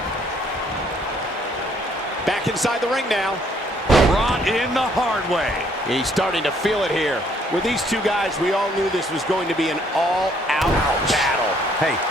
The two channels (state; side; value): normal; both; correlation 0.65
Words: Back inside the ring now. Brought in the hard way. He's starting to feel it here. With these two guys, we all knew this was going to be an all-out battle. Hey,